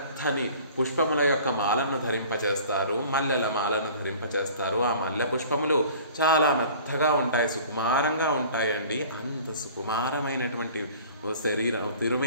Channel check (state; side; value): inverted; both; correlation -0.46